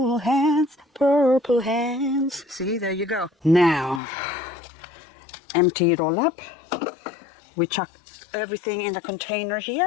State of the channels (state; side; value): drops out; right; at 4.0 s